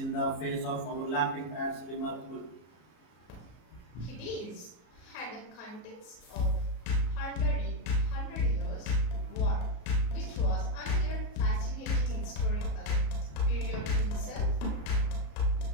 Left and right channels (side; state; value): right; late; 33 ms